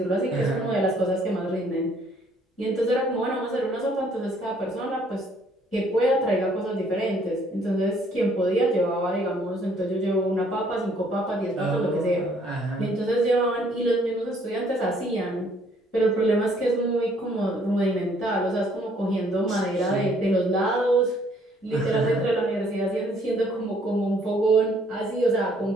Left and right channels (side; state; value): both; normal; correlation 0.63